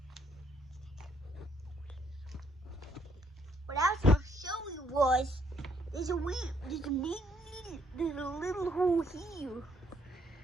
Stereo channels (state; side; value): normal; both; correlation 0.69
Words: What I was going to show you was there's a little hole here.